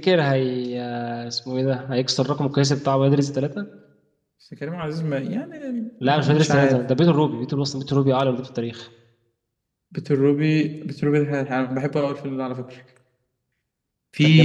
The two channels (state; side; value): identical; both; correlation 1.00